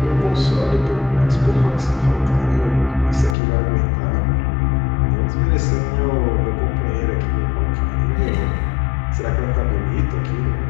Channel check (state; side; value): drops out; right; at 3.4 s